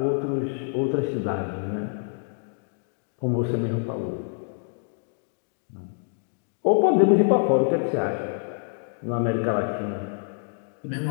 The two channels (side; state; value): right; silent; 61 dB below the other